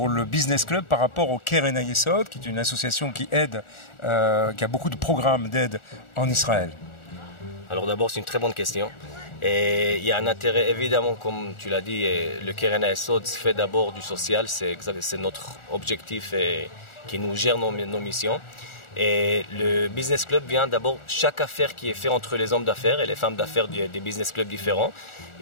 le Business Club par rapport au Keren Hayesod, qui est une association qui aide, qui a beaucoup de programmes d'aide en Israël? Alors d'abord, c'est une très bonne question. Et il y a un intérêt, évidemment, comme tu l'as dit, le Keren Hayesod fait d'abord du social, c'est notre objectif et qui nous gère nos missions. Et le Business Club vient d'abord, chaque affaire qui est faite entre les hommes d'affaires et les femmes d'affaires des business clubs différents,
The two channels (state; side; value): late; right; 1.4 ms